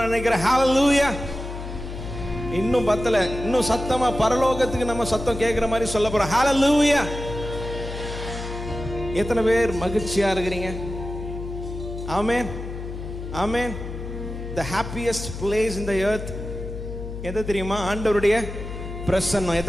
நினைக்கிறேன். ஹல்லேலூயா. இன்னும் பத்தல. இன்னும் சத்தமா பரலோகத்துக்கு நம்ம சத்தம் கேட்கிற மாதிரி சொல்ல போறோம். ஹல்லேலூயா. எத்தனை பேர் மகிழ்ச்சியா இருக்கிறீங்க? ஆமென். ஆமென். The happiest place in the earth எது தெரியுமா? ஆண்டவருடைய பிரசன்னம்.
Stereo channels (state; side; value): noise; left; hum, 8 dB below the sound